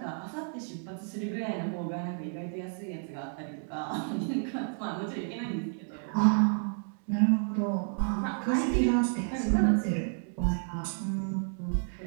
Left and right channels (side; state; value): left; silent; 57 dB below the other